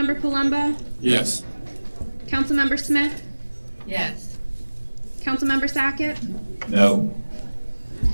Palumbo? Yes. Councilmember Smith? Yes. Councilmember Sackett? No.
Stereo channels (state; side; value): inverted; both; correlation -1.00